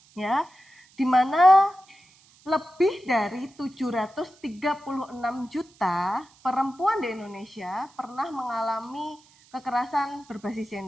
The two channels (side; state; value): right; noise; hiss, 29 dB below the sound